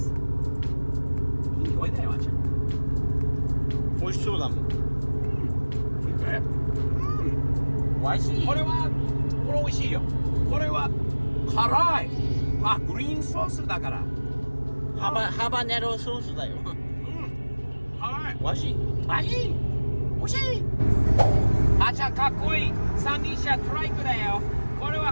いい匂いだよ、あんちゃん。美味しそうだもん。美味しい。これ美味しいよ。これは辛い。あ、グリーンソースだから。ハバネロソースだよ。うん。辛い。美味しい。マジ？美味しい。あちゃんかっこいい。三輪車トライクだよ。これは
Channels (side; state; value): both; inverted; correlation -1.00